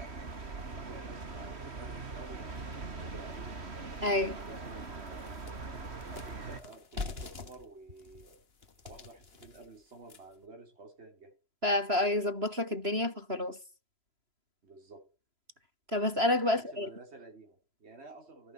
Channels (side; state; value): left; late; 3.0 ms